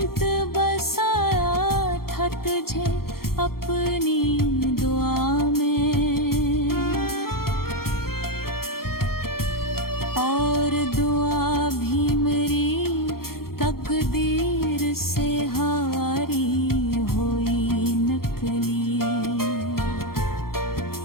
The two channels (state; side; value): late; right; 0.93 ms